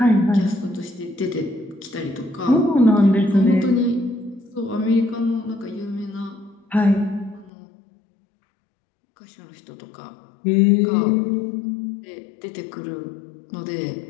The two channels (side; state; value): right; drops out; at 7.5 s